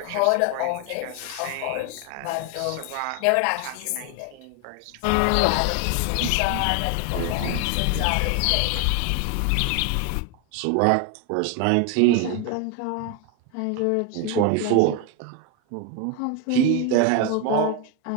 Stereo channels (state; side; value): different; both; correlation 0.01